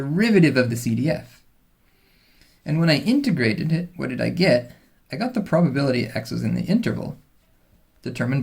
of the CDF. And when I integrated it, what did I get? I got the probability x was in the interval determined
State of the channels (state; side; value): identical; both; correlation 1.00